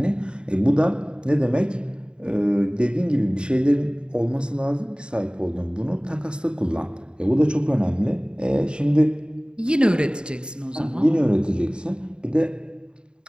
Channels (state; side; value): late; left; 0.051 ms